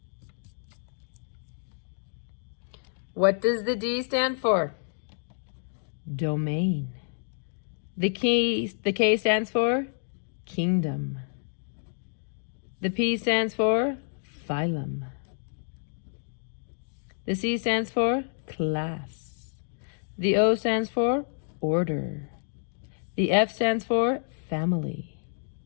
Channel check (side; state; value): right; silent; digital silence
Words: What does the D stand for? Domain. The K stands for kingdom. The P stands for phylum. The C stands for class. The O stands for order. The F stands for family.